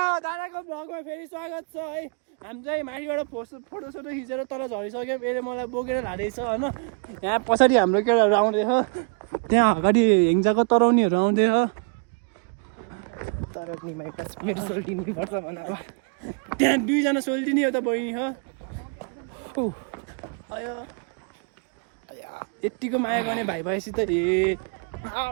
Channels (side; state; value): left; quieter; 36.6 dB